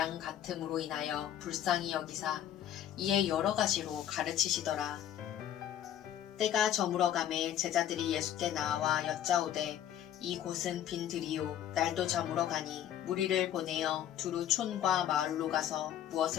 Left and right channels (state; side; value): quieter; right; 10.8 dB